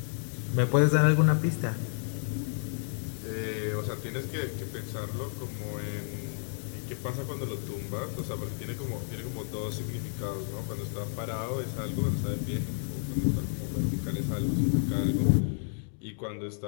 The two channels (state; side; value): silent; right; 57 dB below the other